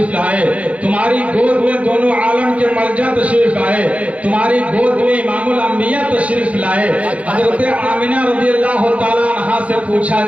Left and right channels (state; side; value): late; left; 0.065 ms